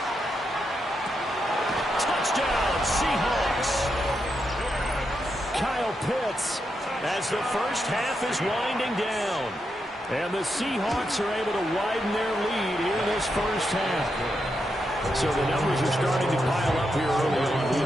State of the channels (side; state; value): both; normal; correlation 0.84